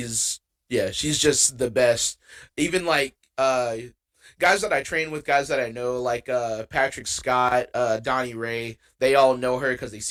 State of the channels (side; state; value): both; identical; correlation 1.00